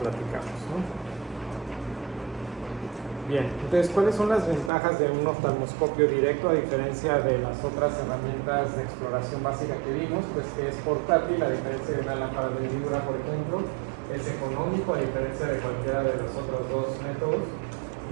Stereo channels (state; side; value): drops out; left; at 4.7 s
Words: ¿no? Bien, entonces, ¿cuáles son las ventajas de un oftalmoscopio directo a diferencia de las otras herramientas de exploración básica que vimos? Pues que es portátil, a diferencia de una lámpara de hendidura, por ejemplo. Es económico, a diferencia de cualquiera de los otros dos métodos.